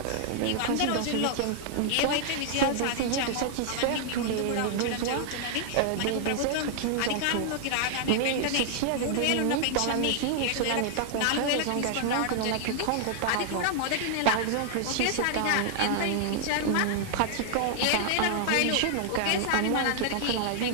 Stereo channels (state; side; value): different; both; correlation 0.00